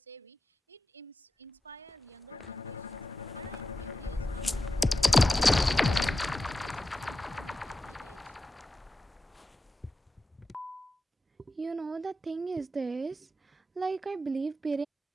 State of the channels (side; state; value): both; normal; correlation 0.92